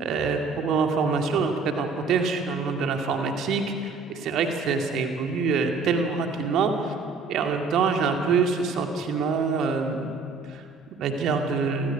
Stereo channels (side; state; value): left; quieter; 4.5 dB